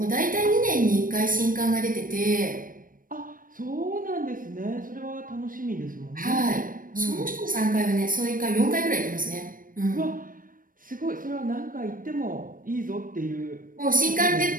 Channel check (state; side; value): late; left; 0.40 ms